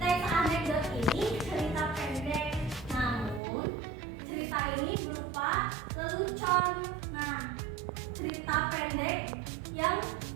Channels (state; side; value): drops out; left; at 3.4 s